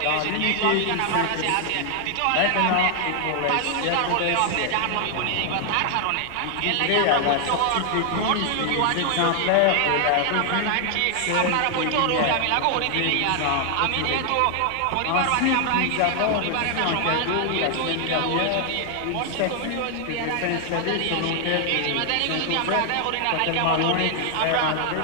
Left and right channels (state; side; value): different; both; correlation 0.00